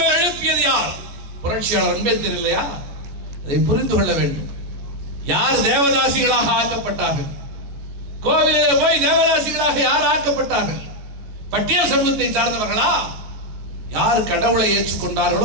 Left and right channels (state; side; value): late; left; 14 ms